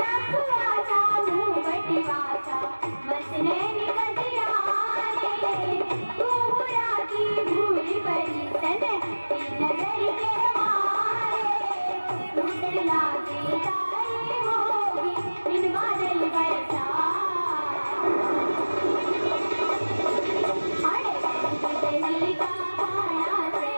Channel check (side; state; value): both; inverted; correlation -1.00